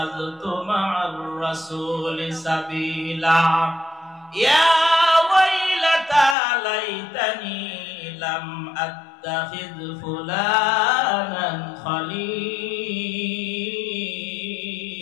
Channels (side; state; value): right; drops out; at 6.4 s